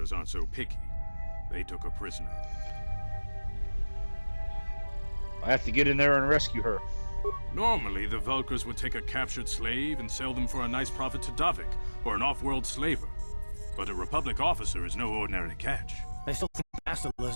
aren't so picky. They took a prisoner. I have to get in there and rescue her. Normally, the Vulkars would take a captured slave and sell them for a nice profit to Davik, or an off-world slaver. But a Republic officer is no ordinary catch. I still think Bastila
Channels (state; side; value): inverted; both; correlation -1.00